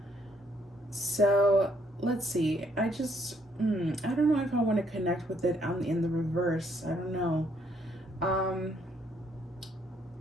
So let's see. I don't know if I want to connect with it in the reverse. I don't know.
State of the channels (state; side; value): normal; both; correlation 0.70